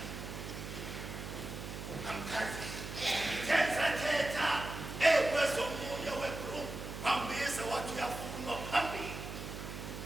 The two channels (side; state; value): right; noise; hum, 8 dB below the sound